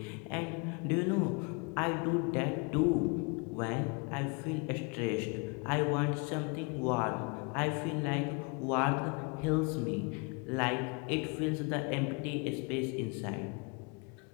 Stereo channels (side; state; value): right; quieter; 33.1 dB